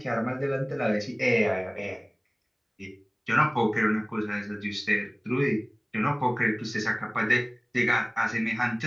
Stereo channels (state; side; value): identical; both; correlation 1.00